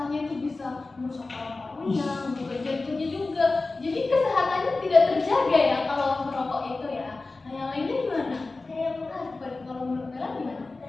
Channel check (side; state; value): right; quieter; 3.5 dB